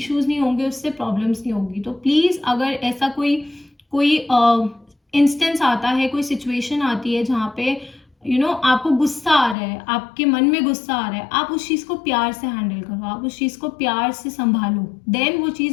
नहीं होंगे, उससे प्रॉब्लम्स नहीं होगी। तो प्लीज़, अगर ऐसा कोई कोई इंस्टेंस आता है, कोई सिचुएशन आती है जहाँ पे आपको गुस्सा आ रहा है, आपके मन में गुस्सा आ रहा है, आप उस चीज़ को प्यार से हैंडल करो, आप उस चीज़ को प्यार से संभालो, देन वो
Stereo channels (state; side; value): drops out; right; at 9.6 s